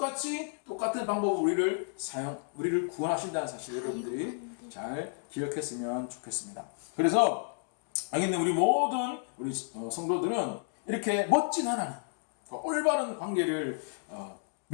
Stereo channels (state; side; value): silent; right; 57 dB below the other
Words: 방법으로 우리를 구원하신다는 사실 여러분들이 잘 기억했으면 좋겠습니다. 그래서 여기 있는 우리 모든 성도들은 이렇게 멋진 하나님, 올바른 관계를